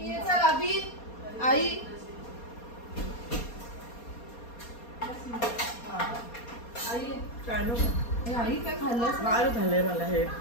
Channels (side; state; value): right; late; 4.2 ms